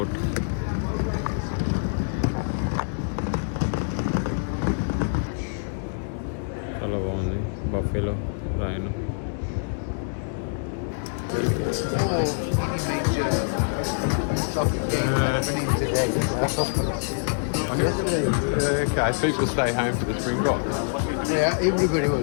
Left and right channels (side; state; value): right; silent; digital silence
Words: చాలా బాగుంది. బఫేలో రాయను. Okay, people stay home for the Springbok. Yeah, everybody